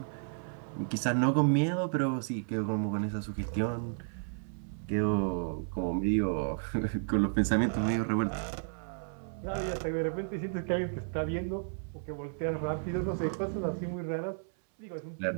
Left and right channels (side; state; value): left; silent; 56 dB below the other